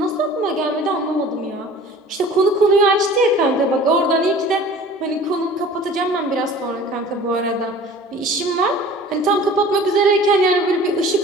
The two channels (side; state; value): both; normal; correlation 0.45